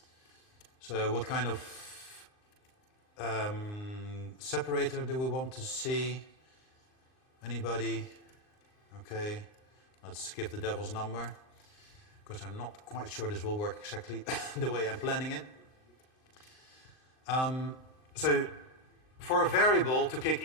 So what kind of separator do we want to see? Anybody? Okay, let's give the devil's number, because I'm not quite sure this will work exactly the way I'm planning it. So for a variable to kick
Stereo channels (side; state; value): right; late; 39 ms